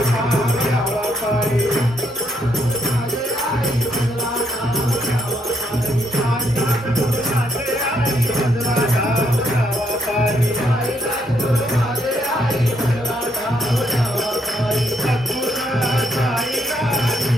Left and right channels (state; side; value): normal; both; correlation 0.73